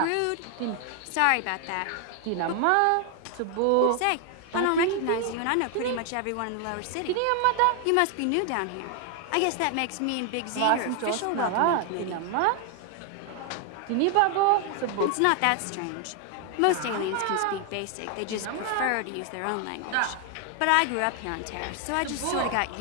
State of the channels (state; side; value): different; both; correlation 0.00